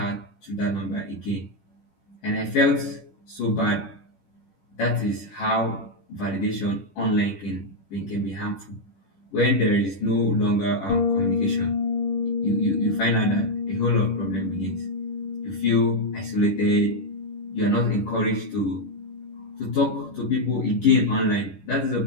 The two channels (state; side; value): late; right; 10 ms